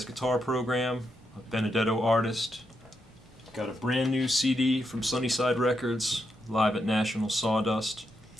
guitar program. A Benedetto artist. Got a brand new CD from Sunnyside Records, live at National Sawdust.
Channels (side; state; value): both; normal; correlation 0.82